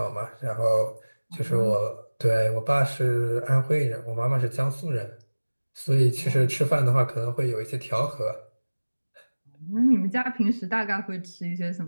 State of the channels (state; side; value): inverted; both; correlation -1.00